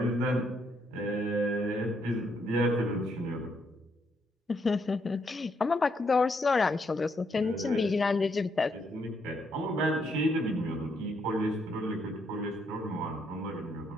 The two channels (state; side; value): normal; both; correlation 0.74